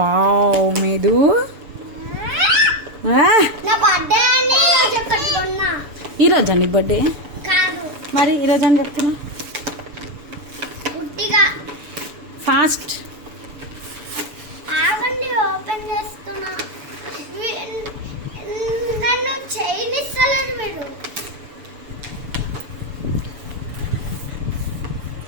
మేదు నా బర్త్డే అని ఈరోజు ఒకటి కొన్నా. ఈరోజు నీ బర్త్డే కాదు మరి ఈరోజు అని చెప్తున్నా గుడ్డిగా. ఫాస్ట్ ఆగండి ఓపెన్ చేస్తున్నా. నన్ను చేయనిస్తలేదు మీరు.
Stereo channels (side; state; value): left; late; 7.0 ms